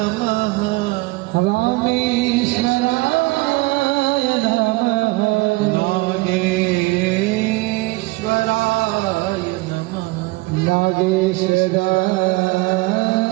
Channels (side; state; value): left; quieter; 22.3 dB